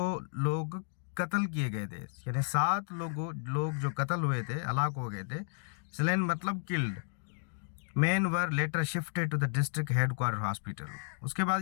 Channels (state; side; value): silent; right; digital silence